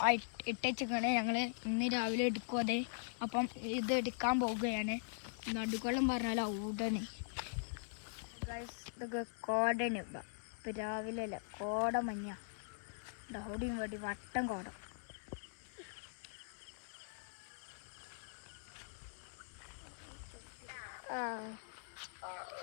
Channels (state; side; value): silent; right; 50 dB below the other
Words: ആ ഇട്ടേക്കാണ് ഞങ്ങൾ ഇന്ന് രാവിലെ എടുക്കും അത്. അപ്പം ഇത് എടുക്കാൻ പോവുകയാണ്. നടുക്കോളം പറഞ്ഞാൽ ഔടണ് ഇതൊക്കെ കോടന്. ഇപ്പം രാവിലെ അല്ല, കോട മഞ്ഞ ഡൗടിയും വേണ്ടി വട്ടം കോട.